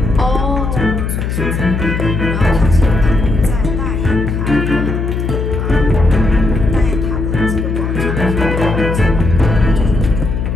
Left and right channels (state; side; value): noise; left; hum, 2 dB below the sound